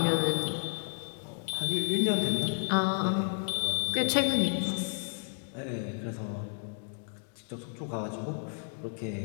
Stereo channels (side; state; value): right; silent; 57 dB below the other